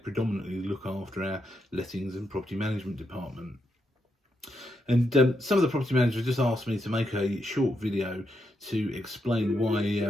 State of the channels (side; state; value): both; normal; correlation 0.82